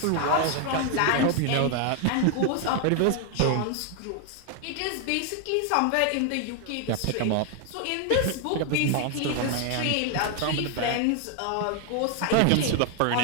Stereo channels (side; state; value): both; different; correlation 0.00